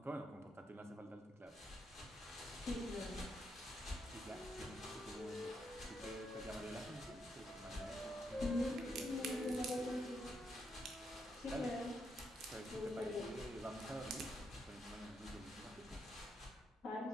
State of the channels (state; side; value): normal; both; correlation 0.79